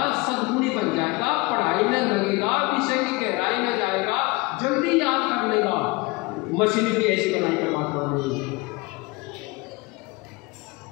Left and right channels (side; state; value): right; quieter; 24.4 dB